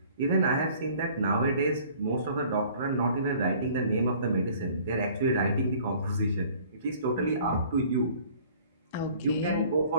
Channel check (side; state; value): both; inverted; correlation -0.53